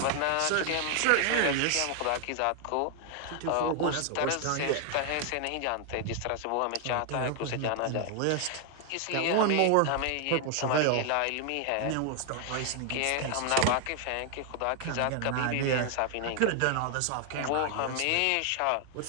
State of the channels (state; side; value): different; both; correlation 0.00